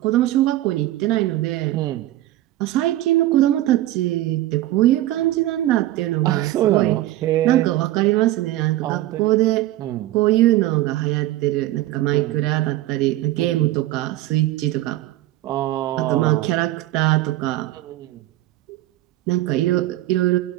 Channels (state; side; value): quieter; left; 15.4 dB